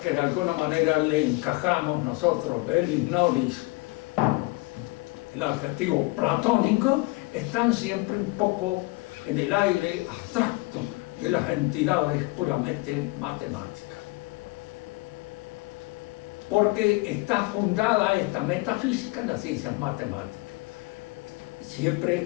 que de alguna manera le encajamos nosotros, Belis Nolis, el adjetivo platónico, están siempre un poco en el aire abstracto de las entidades puramente matemáticas. Porque está fundada esta metafísica en las ciencias matemáticas.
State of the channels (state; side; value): quieter; right; 23.9 dB